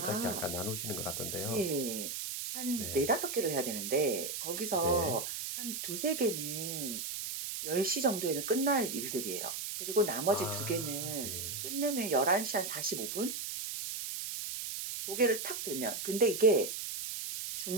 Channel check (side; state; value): right; noise; hiss, 5 dB below the sound